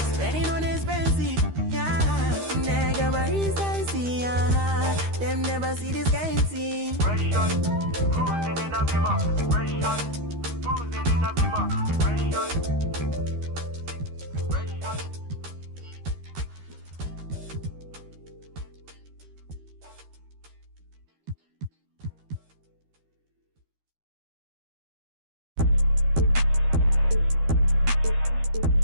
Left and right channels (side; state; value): left; late; 13 ms